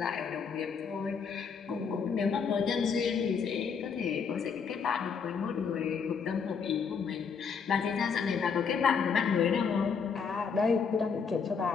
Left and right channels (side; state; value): right; quieter; 6.1 dB